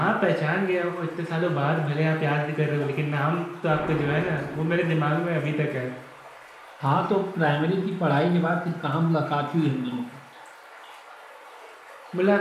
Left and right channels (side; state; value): both; identical; correlation 1.00